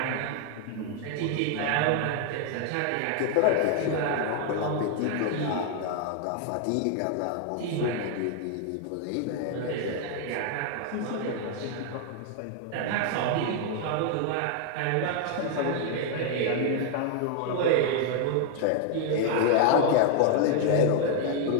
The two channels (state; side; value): different; both; correlation 0.00